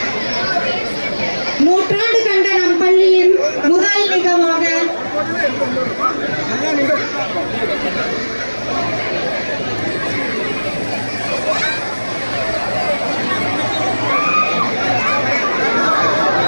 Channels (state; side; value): inverted; both; correlation -1.00